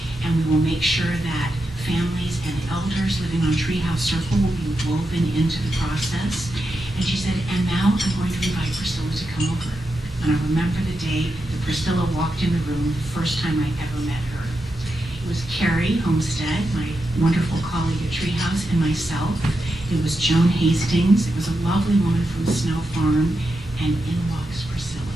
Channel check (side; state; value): both; normal; correlation 0.87